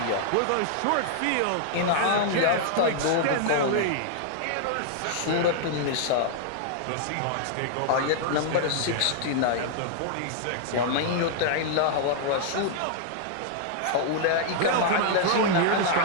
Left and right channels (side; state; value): both; different; correlation -0.01